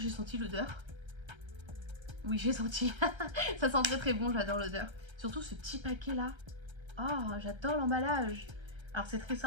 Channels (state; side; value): late; left; 1.3 ms